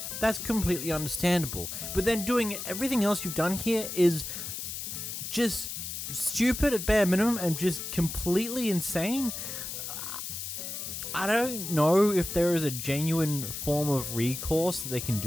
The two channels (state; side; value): noise; left; hiss, 6 dB below the sound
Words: That's completely understandable. But then doing everything else you've done here is just stupid at bare minimum and just completely insane. I don't know if there is a genuine form of recourse that they can